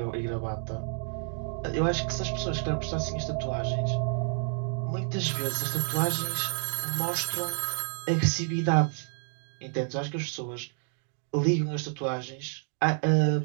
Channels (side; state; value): left; silent; 58 dB below the other